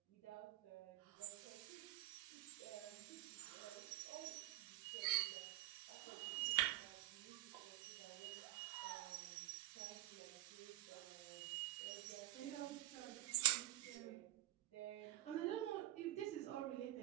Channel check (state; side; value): quieter; left; 15.8 dB